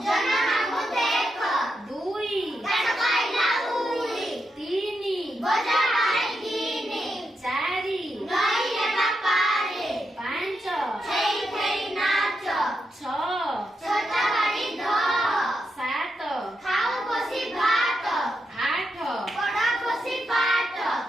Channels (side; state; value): both; normal; correlation 0.85